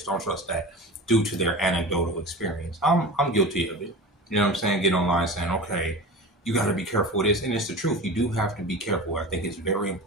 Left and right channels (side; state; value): both; normal; correlation 0.32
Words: don't trust that, due to their anecdotal experience. I'm guilty of it. You know what I'm saying? Get online saying, okay, you got to be careful with this. And it's the truth. You do have to be careful. I think it's very